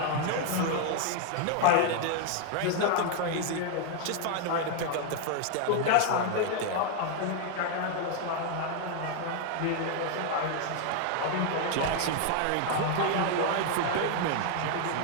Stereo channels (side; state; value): both; different; correlation 0.00